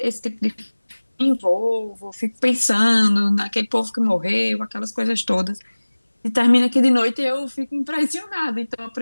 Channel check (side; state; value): both; inverted; correlation -1.00